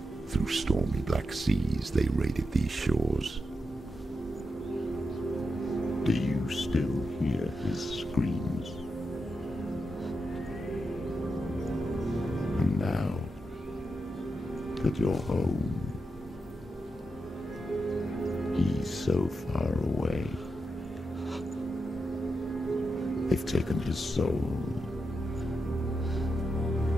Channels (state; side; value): normal; both; correlation 0.86